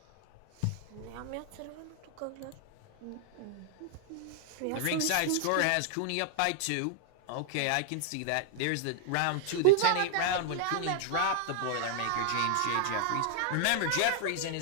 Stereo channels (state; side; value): different; both; correlation -0.01